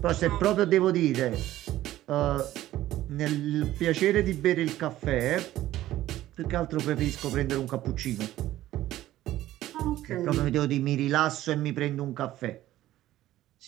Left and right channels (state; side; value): quieter; left; 14.5 dB